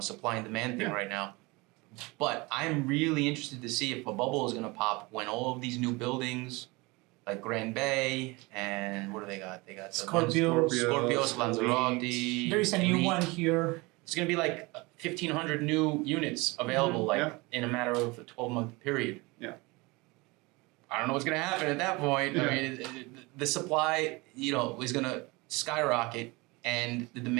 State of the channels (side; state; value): left; quieter; 24.7 dB